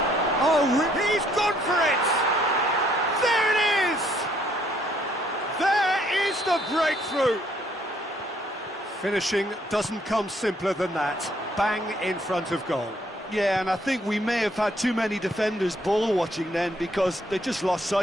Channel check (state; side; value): normal; both; correlation 0.67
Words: Oh, he's gone for it! There it is! There is the breakthrough! Finishing doesn't come simpler than that. Bang in front of goal. Yeah, and I think we may have had too many defenders ball watching then because they just lost